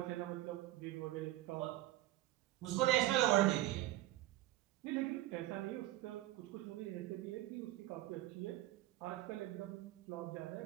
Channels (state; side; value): quieter; left; 16.1 dB